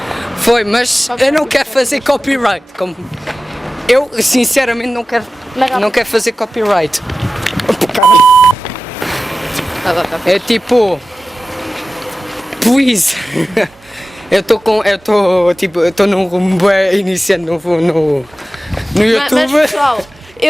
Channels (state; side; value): normal; both; correlation 0.95